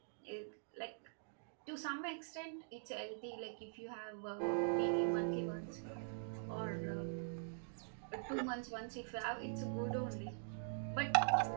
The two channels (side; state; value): left; silent; digital silence